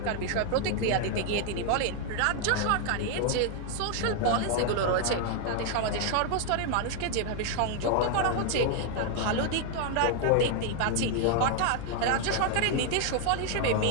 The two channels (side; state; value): both; different; correlation 0.00